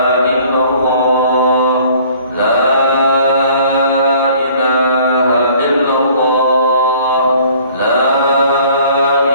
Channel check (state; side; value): inverted; both; correlation -0.54